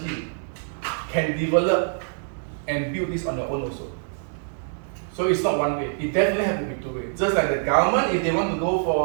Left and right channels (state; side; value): silent; left; digital silence